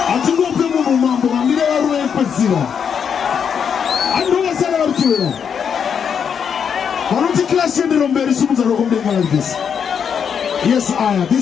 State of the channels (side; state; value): right; quieter; 7.3 dB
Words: Atingope mu mambo ambire waro empasira. Andonga sala arkiwera. Marondera Clash ndiro mbere sumuza rokombe like this. Yes,